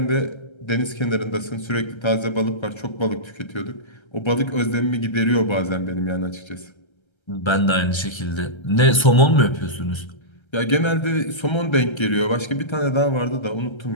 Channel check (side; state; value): right; late; 1.3 ms